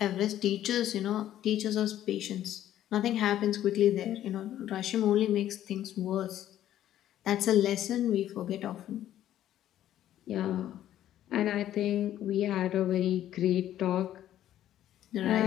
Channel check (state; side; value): quieter; right; 12.1 dB